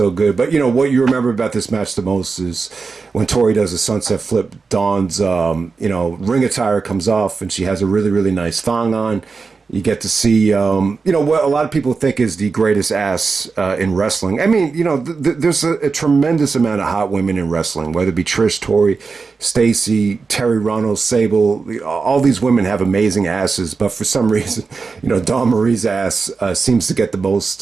good. But, what you remember about this match the most is when Torrie does a sunset flip, Dawn's, ring attire comes off and she has a really, really nice thong on. You get to see, what a lot of people think is the greatest ass in wrestling. I mean, there's a tremendous amount of hot women in wrestling, whether it be Trish, Torrie, Stacy, Terry Runnels, Sable. All these women have amazing asses, but for some reason, Dawn Marie's ass seems to get the most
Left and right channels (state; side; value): quieter; left; 4.6 dB